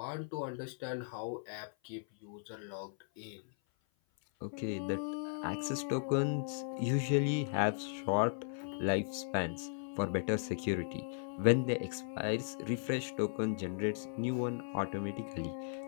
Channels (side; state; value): right; silent; 53 dB below the other